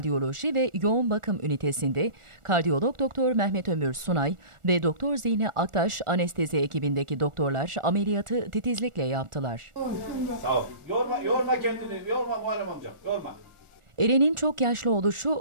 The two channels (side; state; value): left; late; 1.4 ms